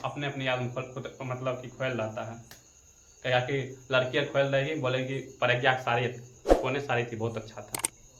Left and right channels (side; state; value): both; identical; correlation 1.00